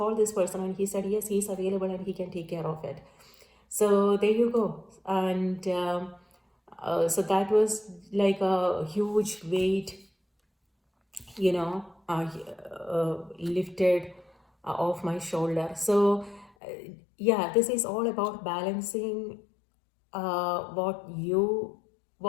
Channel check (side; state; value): right; drops out; at 16.5 s